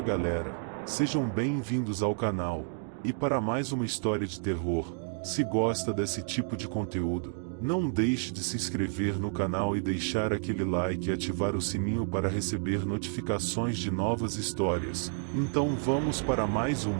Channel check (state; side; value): silent; left; 58 dB below the other